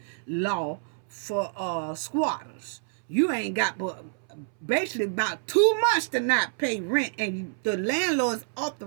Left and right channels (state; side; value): silent; left; 60 dB below the other